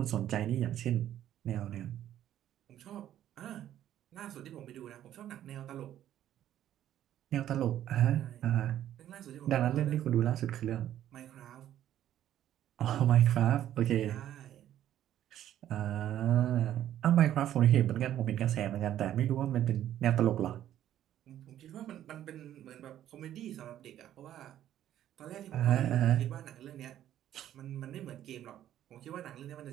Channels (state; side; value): quieter; left; 11.7 dB